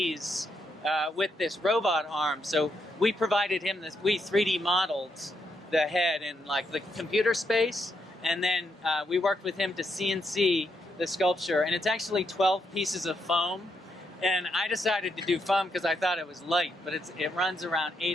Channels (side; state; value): both; normal; correlation 0.79